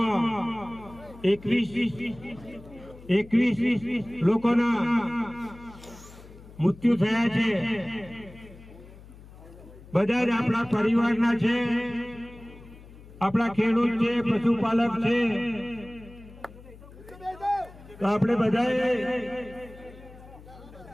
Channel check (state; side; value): noise; left; hum, 19 dB below the sound